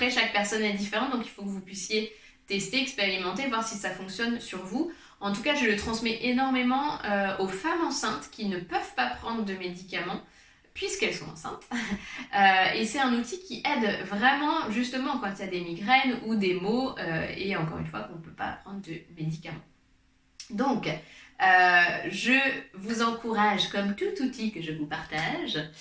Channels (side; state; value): both; identical; correlation 1.00